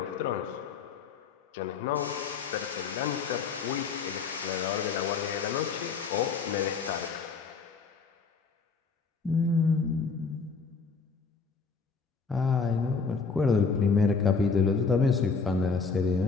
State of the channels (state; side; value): quieter; right; 5.0 dB